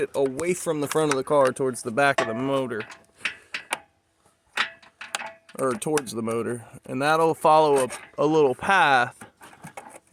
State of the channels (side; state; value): both; identical; correlation 1.00